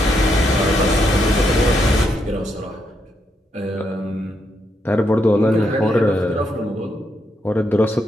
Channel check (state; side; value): normal; both; correlation 0.79